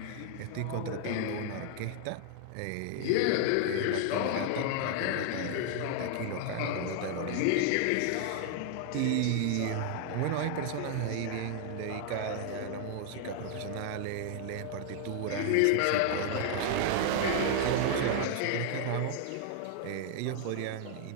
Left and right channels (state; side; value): different; both; correlation 0.00